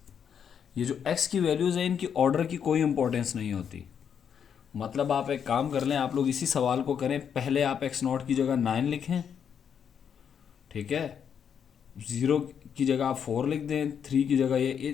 ये जो एक्स की वैल्यूज़ हैं, इनकी ऑर्डर की कोई इंपॉर्टेंस नहीं होती। मतलब आप एक काम कर लें, आप लोग इसी सवाल को करें, पहले आप एक्स नॉट की जगह 9 लिखें, ठीक है, 0 की जगह आप 4 लिख दें, 3 की जगह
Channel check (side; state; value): right; quieter; 7.8 dB